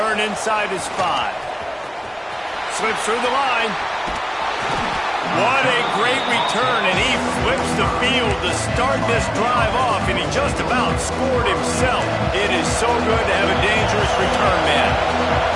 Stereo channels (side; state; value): both; identical; correlation 1.00